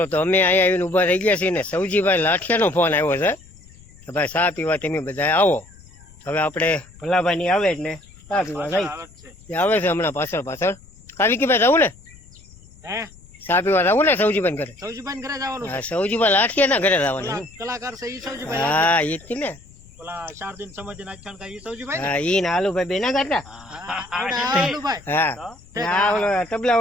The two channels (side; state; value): left; noise; rumble, 23 dB below the sound